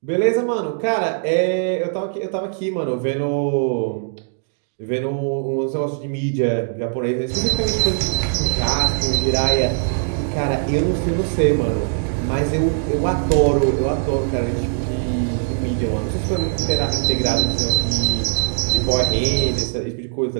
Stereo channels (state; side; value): silent; left; digital silence